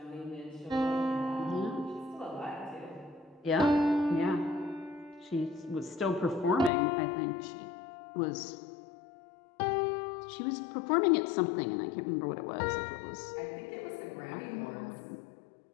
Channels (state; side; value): drops out; right; at 6.7 s